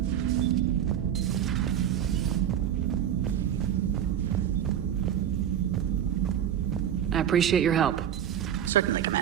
I appreciate your help. Certainly,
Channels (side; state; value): left; quieter; 10.0 dB